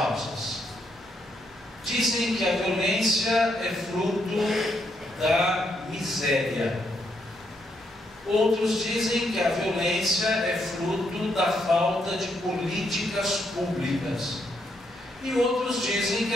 Dizem que a violência é fruto da miséria. Outros dizem que a violência é fruto da falta de políticas públicas. E outros dizem que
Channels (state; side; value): normal; both; correlation 0.77